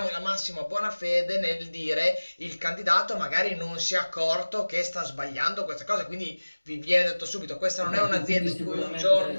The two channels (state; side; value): inverted; both; correlation -1.00